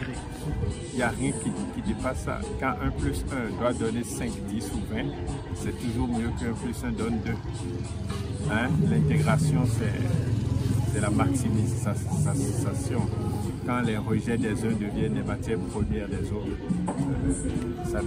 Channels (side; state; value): both; identical; correlation 1.00